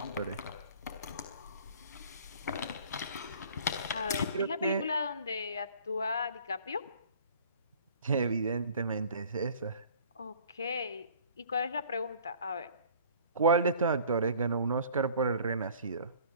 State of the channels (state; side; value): inverted; both; correlation -0.50